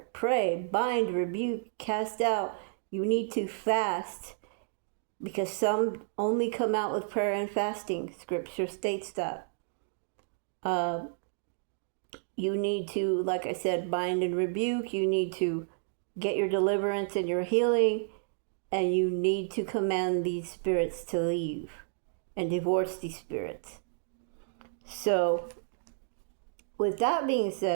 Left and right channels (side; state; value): left; silent; digital silence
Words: Pray, bind, rebuke, cast out. You need to fast, because some only come out with prayer and fasting. Scripture states that. You need to, like I said, bind and rebuke. You need to get your deliverance and your healing. And you need to command these spirits to leave and divorce these spirits. So, with that being